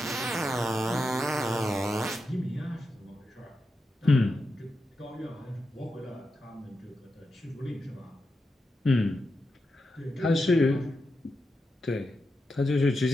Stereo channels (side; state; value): both; normal; correlation 0.88